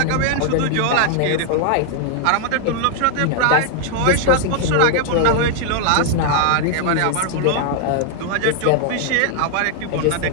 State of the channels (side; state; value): both; different; correlation 0.00